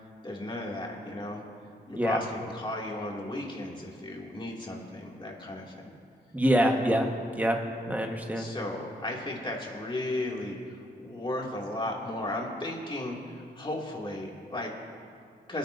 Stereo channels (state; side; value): normal; both; correlation 0.72